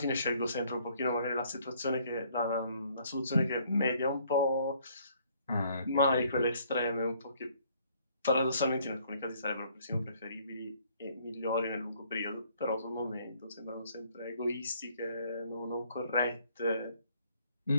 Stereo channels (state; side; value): inverted; both; correlation -0.63